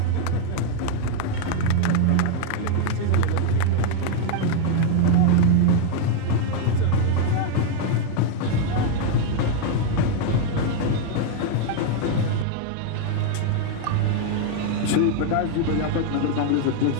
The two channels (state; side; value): different; both; correlation 0.00